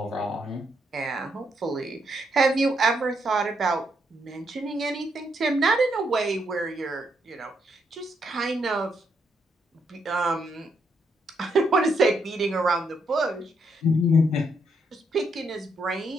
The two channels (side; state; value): both; normal; correlation 0.77